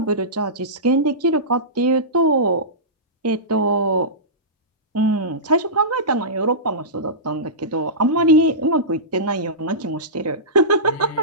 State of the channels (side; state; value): both; normal; correlation -0.19